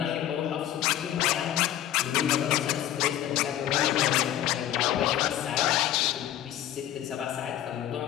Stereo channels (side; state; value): right; quieter; 12.1 dB